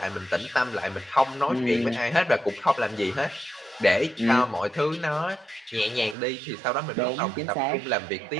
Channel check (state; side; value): drops out; left; at 6.2 s